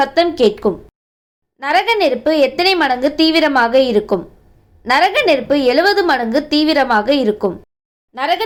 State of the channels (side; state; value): both; identical; correlation 1.00